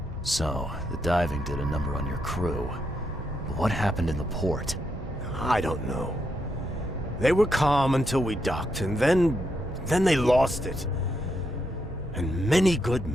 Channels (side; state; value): both; normal; correlation 0.81